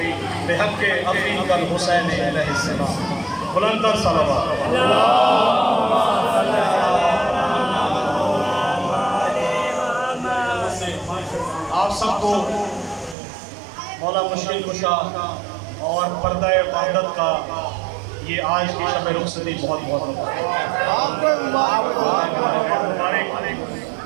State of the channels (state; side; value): drops out; left; at 13.2 s